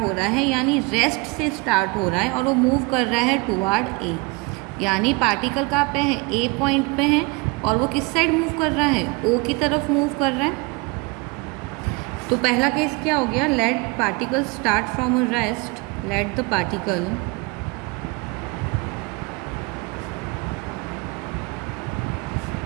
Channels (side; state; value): left; quieter; 27.1 dB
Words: रहा है, यानी रेस्ट से स्टार्ट हो रहा है, और वो मूव कर रहा है टुवार्ड ए। यानी पार्टिकल कहाँ पे है, ए पॉइंट पे है, और वो किस साइड मूव कर रहा है, ओ की तरफ मूव कर रहा है। तो पहला केस क्या हो गया, let particle start from a rest, let the particle